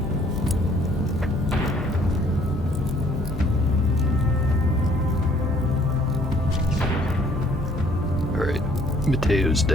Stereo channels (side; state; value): both; normal; correlation 0.61